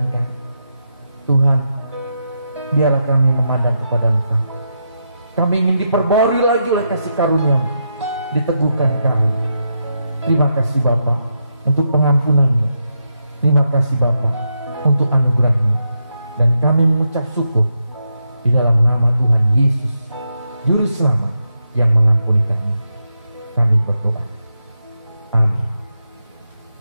kami. Tuhan, biarlah kami memandang kepada Engkau. Kami ingin diperbarui lagi oleh kasih karunia-Mu, diteguhkan kami. Terima kasih Bapa untuk pengampunan-Mu. Terima kasih Bapa untuk anugerah-Mu. Dan kami mengucap syukur di dalam nama Tuhan Yesus, Juru Selamat yang mengampuni kami. Kami berdoa. Amin.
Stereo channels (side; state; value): both; inverted; correlation -0.84